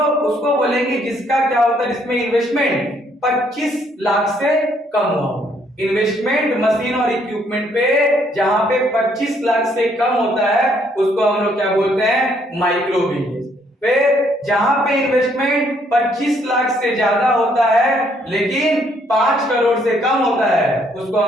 उसको बोलेंगे जिसका क्या होता है, जिसमें इन्वेस्टमेंट 25 लाख से कम हुआ। इन्वेस्टमेंट मशीन और इक्विपमेंट पे जहां पे 25 लाख से कम होता है उसको हम लोग क्या बोलते हैं, माइक्रो बिजनेस। फिर जहां पे इन्वेस्टमेंट 25 लाख से ज्यादा होता है लेकिन 5 करोड़ से कम होता है उसको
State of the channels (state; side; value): normal; both; correlation 0.68